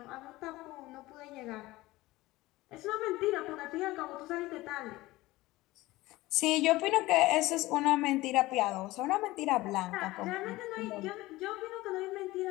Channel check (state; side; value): quieter; right; 18.9 dB